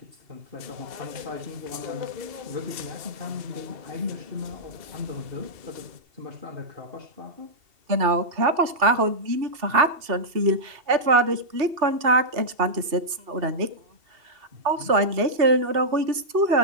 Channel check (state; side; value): late; left; 2.7 ms